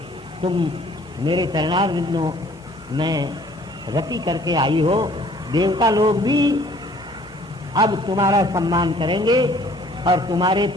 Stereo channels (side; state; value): both; normal; correlation 0.56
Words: तुम मेरे चरणार बिंदों में रति करके आई हो देवता लोग भी अब तुम्हारा सम्मान करेंगे और तुम्हारे